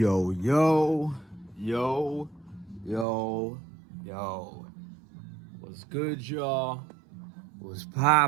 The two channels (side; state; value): left; drops out; at 3.1 s